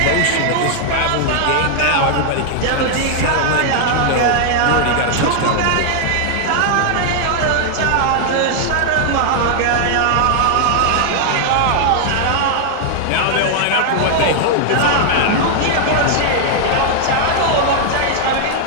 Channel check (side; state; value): both; different; correlation 0.00